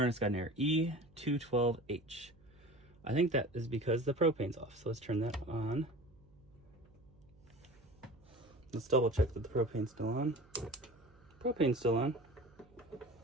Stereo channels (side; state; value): right; noise; hum, 27 dB below the sound